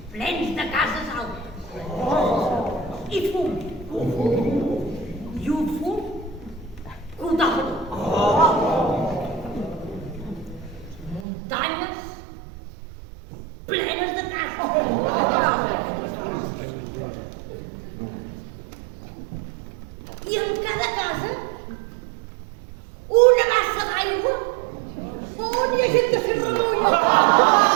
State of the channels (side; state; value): left; drops out; at 11.2 s